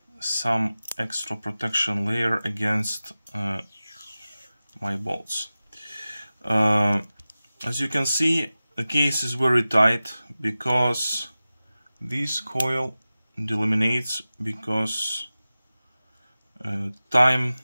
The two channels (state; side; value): inverted; both; correlation -0.96